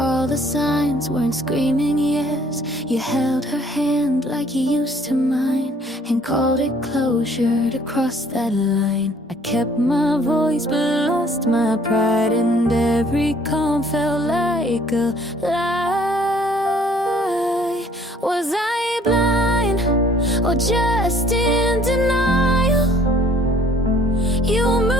the signs weren't screaming yes. You held her hand like you used to mine, and called it closure to cross that line. I kept my voice but lost my pride, and every calm felt like a lie. Was I blind or just in denial? You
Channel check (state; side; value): normal; both; correlation 0.58